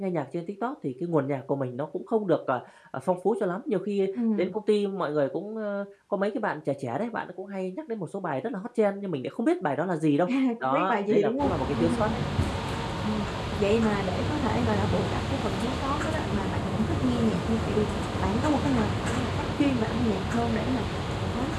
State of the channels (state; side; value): identical; both; correlation 1.00